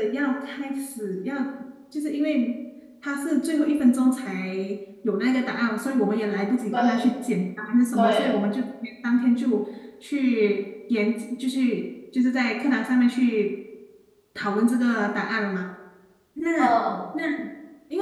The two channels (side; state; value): both; identical; correlation 1.00